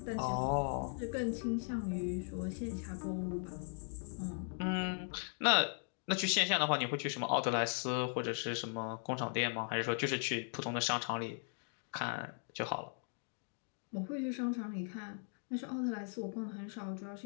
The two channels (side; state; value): right; silent; 52 dB below the other